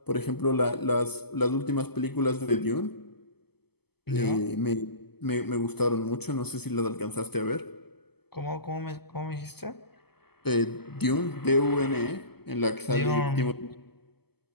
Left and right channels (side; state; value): right; late; 0.97 ms